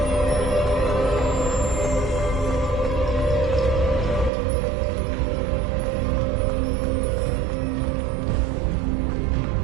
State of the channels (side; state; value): left; drops out; at 4.3 s